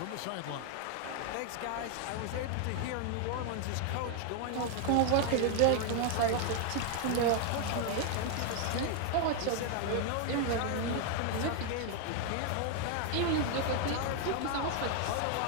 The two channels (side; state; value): both; different; correlation 0.00